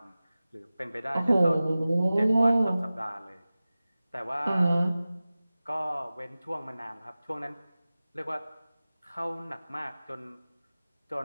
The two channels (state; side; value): inverted; both; correlation -0.97